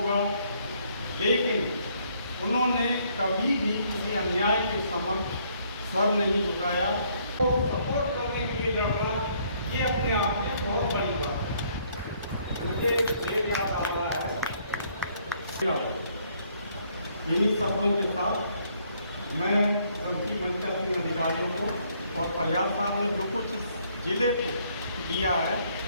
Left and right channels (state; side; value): inverted; both; correlation -0.67